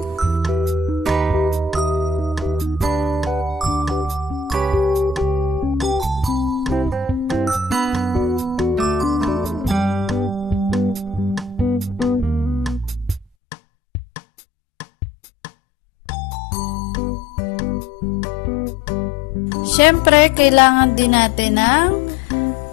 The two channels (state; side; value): drops out; right; at 13.2 s